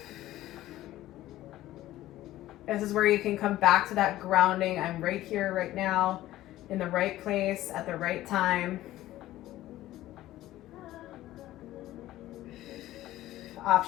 This is where you can come back to that grounding. I'm right here, right now, in the right place, at the right time.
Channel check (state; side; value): quieter; right; 15.1 dB